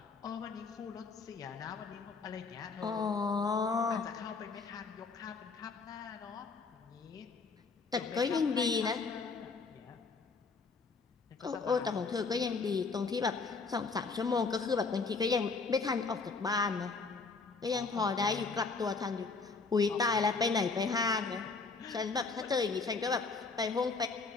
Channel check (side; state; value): right; quieter; 4.4 dB